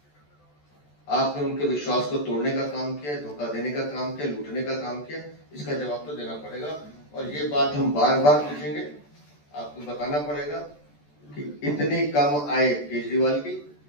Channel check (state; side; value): late; right; 14 ms